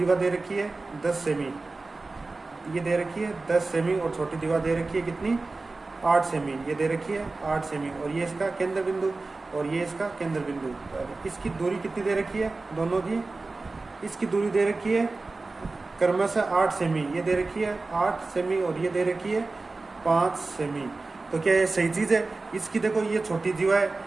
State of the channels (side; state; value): left; quieter; 3.5 dB